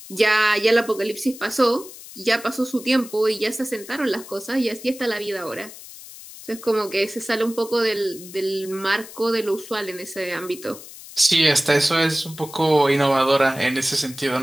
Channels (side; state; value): left; noise; hiss, 16 dB below the sound